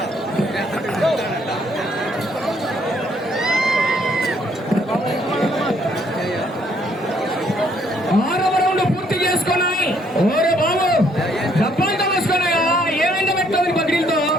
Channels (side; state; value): both; normal; correlation 0.67